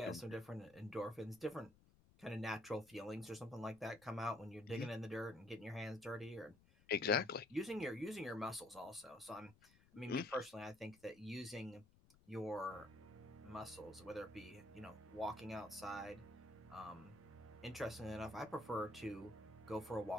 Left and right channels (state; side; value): noise; left; rumble, 26 dB below the sound